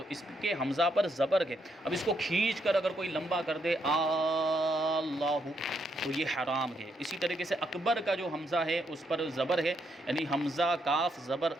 اس کے حمزہ پر زبر ہے۔ اب اس کو کھینچ کر اگر کوئی لمبا کر دے اللہ تو یہ حرام ہے۔ اسی طریقے سے اکبر کا جو حمزہ ہے اس پر زبر ہے، یعنی حمزہ کاف زبر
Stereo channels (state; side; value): normal; both; correlation 0.77